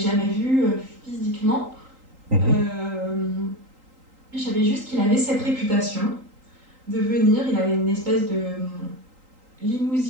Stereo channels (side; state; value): left; late; 3.8 ms